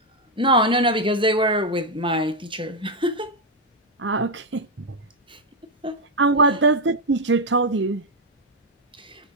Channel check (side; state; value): both; normal; correlation 0.02